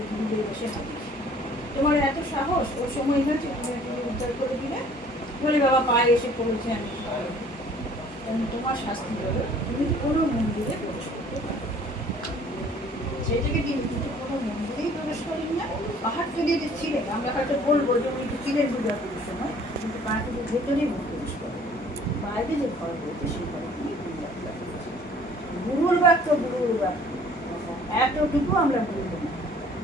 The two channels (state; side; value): normal; both; correlation 0.54